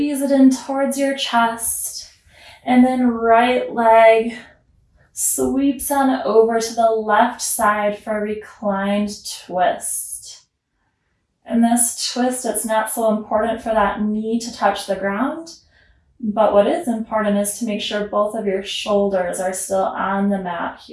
it in towards your chest, and then right leg sweeps on over to the left side for a reclined twist. In this twist, it's not so important for that knee to touch the ground, but what is important is to make sure both of your shoulders are still on the mat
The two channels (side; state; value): both; identical; correlation 1.00